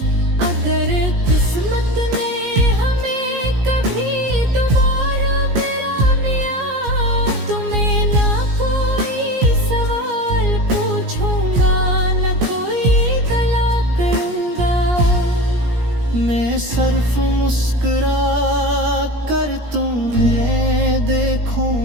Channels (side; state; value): left; late; 17 ms